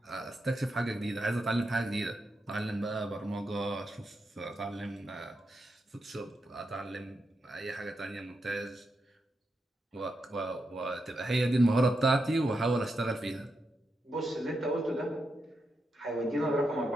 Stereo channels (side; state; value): both; normal; correlation 0.85